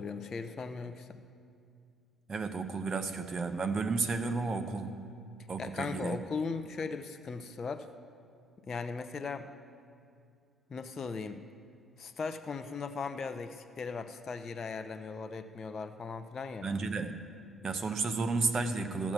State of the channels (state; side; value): normal; both; correlation 0.77